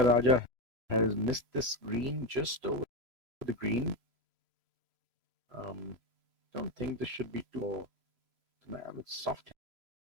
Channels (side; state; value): left; late; 3.0 ms